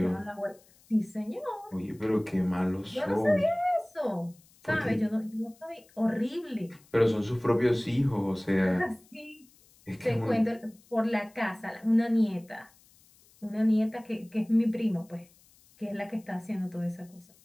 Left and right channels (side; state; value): left; noise; hiss, 29 dB below the sound